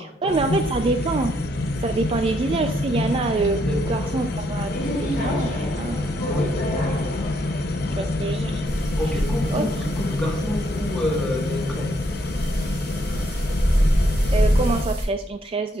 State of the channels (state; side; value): normal; both; correlation 0.72